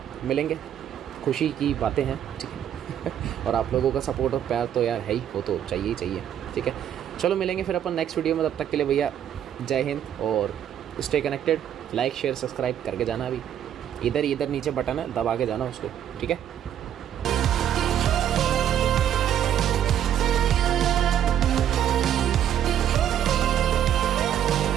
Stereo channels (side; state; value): left; quieter; 10.1 dB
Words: मिलेंगे, खुशी की बातें हैं, ठीक है और आप लोगों का सपोर्ट और प्यार तो यार है ही, वो तो चाहिए ही चाहिए, ठीक है। चलो मिलेंगे फिर अपन नेक्स्ट वीडियो में, तब तक के लिए भैया जय हिंद और stay connected. Like share subscribe करके जाना, अभी इधर नीचे बटन है दबा के जाना उसको, ठीक है।